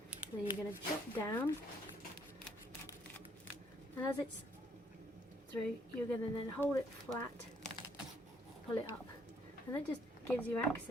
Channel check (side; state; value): both; normal; correlation 0.67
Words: So you're going to chop down, and as it's through, you're going to then hold it flat, pull it up, and that just gives you